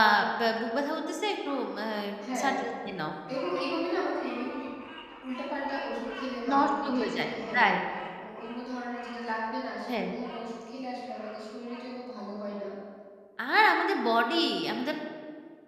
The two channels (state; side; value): identical; both; correlation 1.00